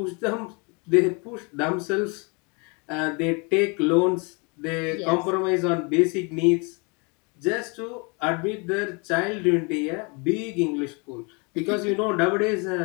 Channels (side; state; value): right; quieter; 31.9 dB